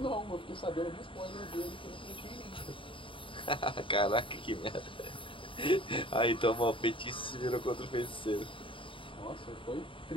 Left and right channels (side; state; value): right; late; 0.25 ms